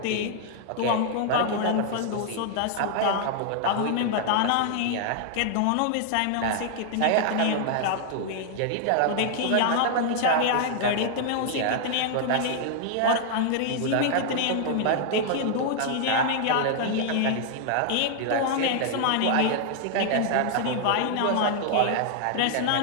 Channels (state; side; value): different; both; correlation -0.01